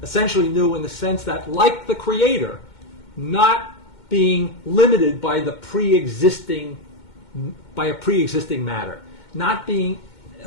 essentially new in the sense that, like the Creator, not being limited by a pre-existing matter, not being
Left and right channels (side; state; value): right; late; 2.1 ms